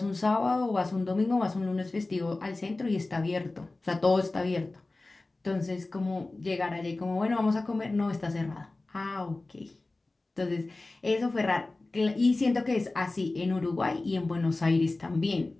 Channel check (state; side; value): quieter; right; 3.1 dB